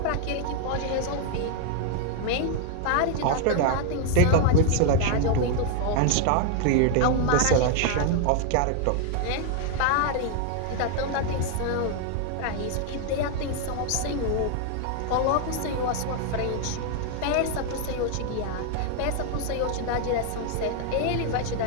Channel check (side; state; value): both; different; correlation 0.00